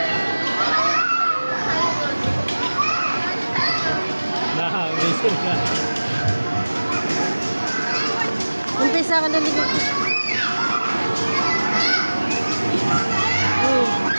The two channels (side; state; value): both; inverted; correlation -1.00